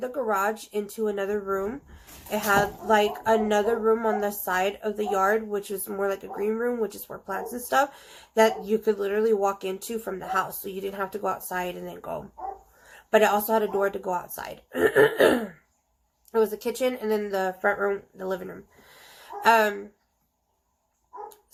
the garage into another room. It had like another room on the side of the yard, which was more like a green room, which is for plants and stuff, that you could literally walk into from the house. So you didn't have to go outside and then go. But it also had a door to go outside. It was a kitchen and then the front room, the living room.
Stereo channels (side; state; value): both; identical; correlation 1.00